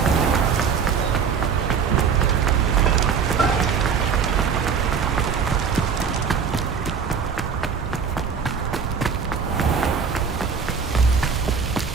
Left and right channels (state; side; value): quieter; left; 6.3 dB